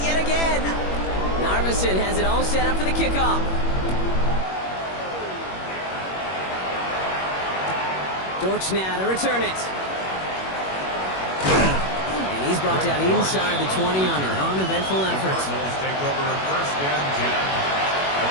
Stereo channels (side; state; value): right; late; 21 ms